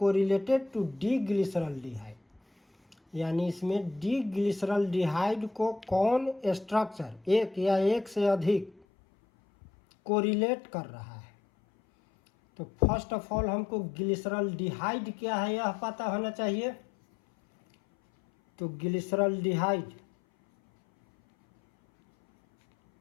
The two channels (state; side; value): drops out; right; at 8.8 s